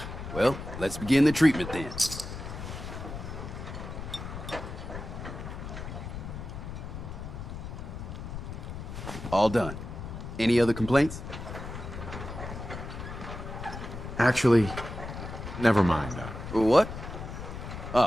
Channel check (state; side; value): noise; left; rumble, 8 dB below the sound